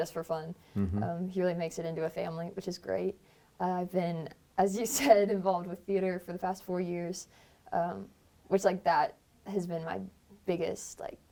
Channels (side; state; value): both; identical; correlation 1.00